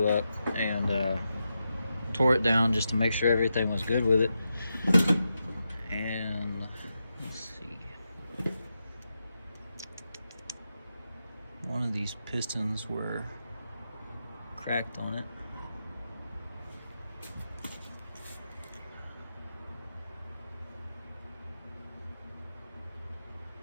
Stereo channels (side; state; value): both; inverted; correlation -0.87